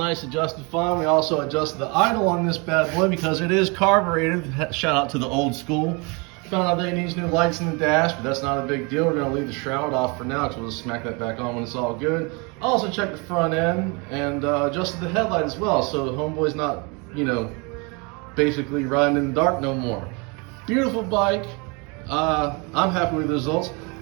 adjusted fine. We also adjusted the idle on this bad boy because it is carbureted. Shout out to the old school. Found out that it needs new lights in the dash, but that's not a big deal. We're gonna leave the shroud off for now, because we'll just smack that back on when it's all good. Also checked the front end and adjusted the headlight as well, so the Homeboy's not, you know, basically riding in the dark no more. Beautiful bike. I'm happy with the results.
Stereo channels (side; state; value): left; quieter; 30.3 dB